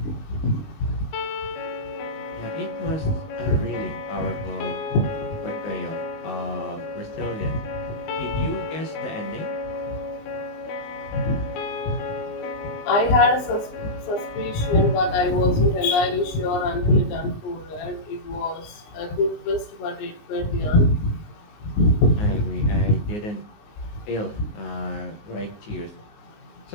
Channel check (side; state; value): right; late; 19 ms